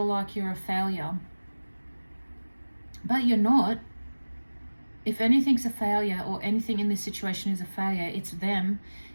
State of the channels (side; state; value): both; inverted; correlation -1.00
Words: like you're a failure, but you're not. If anything's a failure, or anything in this situation is a failure, it's them,